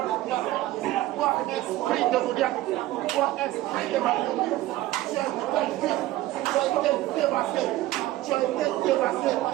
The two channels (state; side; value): quieter; left; 16.1 dB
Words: totale. Toi, esprit de Goliath, toi, esprit de Marie, tu as vaincu, tu as été dévasté, tu as été dévasté.